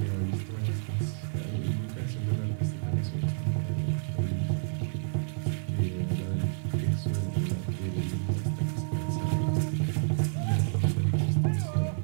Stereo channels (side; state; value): left; silent; digital silence